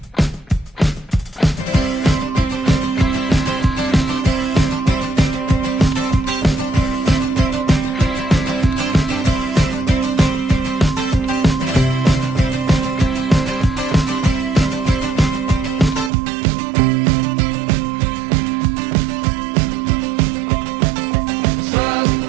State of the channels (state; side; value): drops out; left; at 16.1 s